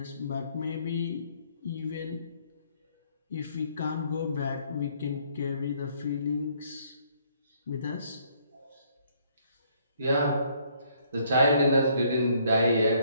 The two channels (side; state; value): both; inverted; correlation -0.66